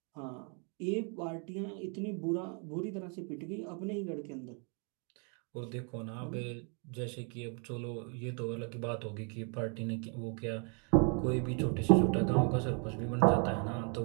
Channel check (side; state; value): left; quieter; 38.6 dB